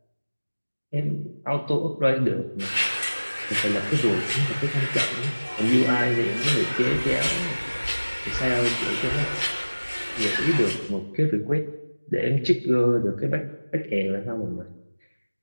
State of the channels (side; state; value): both; inverted; correlation -1.00